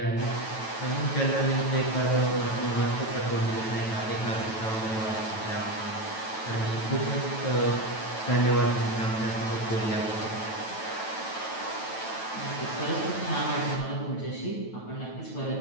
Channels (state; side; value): late; right; 9.1 ms